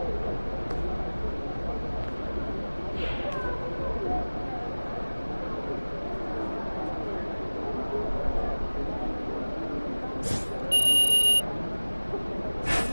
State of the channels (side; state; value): both; inverted; correlation -1.00